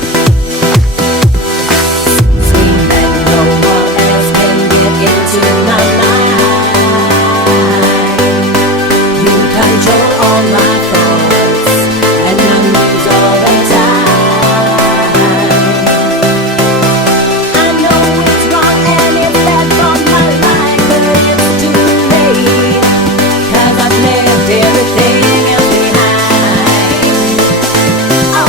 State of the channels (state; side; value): normal; both; correlation 0.21